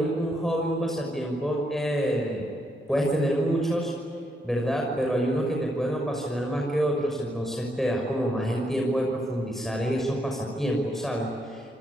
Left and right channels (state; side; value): normal; both; correlation 0.77